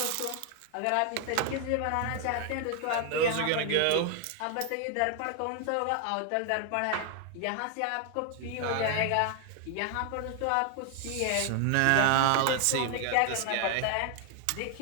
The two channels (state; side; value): different; both; correlation 0.00